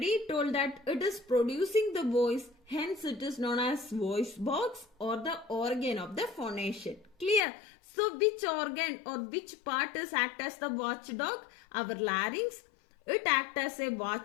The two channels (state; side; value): drops out; right; at 7.4 s